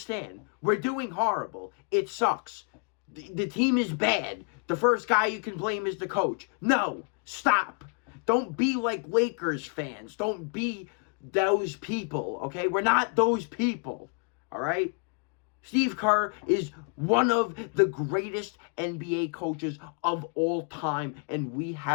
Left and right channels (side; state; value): right; quieter; 38.8 dB